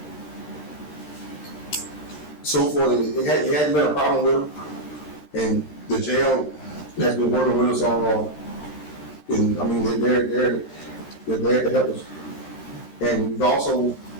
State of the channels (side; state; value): right; late; 13 ms